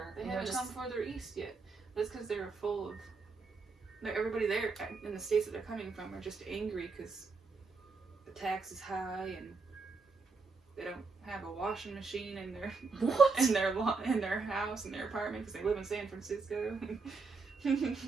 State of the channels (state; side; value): quieter; left; 4.3 dB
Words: they haven't come further east yet. That's because they're full of. Everybody there in the states that they're coming from are just angry because the tax is high and they don't have a washing machine in their in their house, in their apartment, because they live in San Francisco.